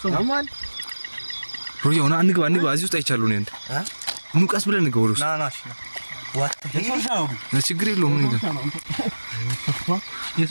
ማን ሮዮ ና እንግባ እዚህ ውስጥ አይቻለሁ ነው እንዴ ኑቃስ ብለን እንግባ ወሩስ ናናሽ ዋት ችግር የለውም ምን ይላል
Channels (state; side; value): inverted; both; correlation -1.00